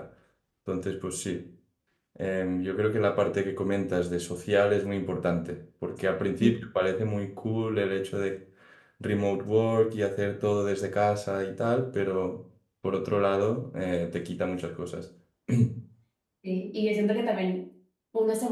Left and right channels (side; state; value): both; identical; correlation 1.00